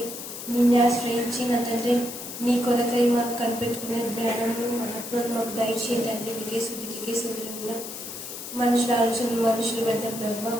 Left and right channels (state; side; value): noise; left; hiss, 9 dB below the sound